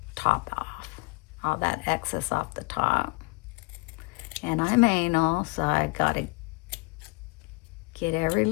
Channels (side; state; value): right; quieter; 28.0 dB